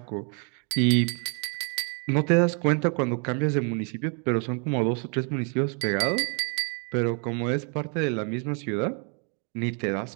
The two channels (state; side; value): quieter; left; 38.3 dB